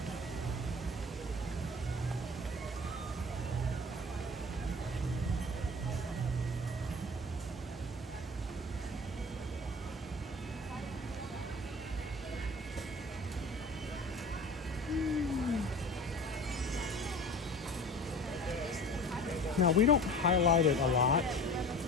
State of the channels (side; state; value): both; normal; correlation 0.39